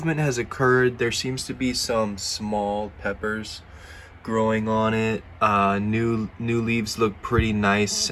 has occurred. There seems to be some small peppers growing on it. New leaves look pretty nice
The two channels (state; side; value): identical; both; correlation 1.00